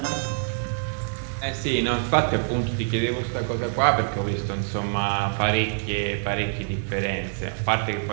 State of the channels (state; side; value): silent; left; 61 dB below the other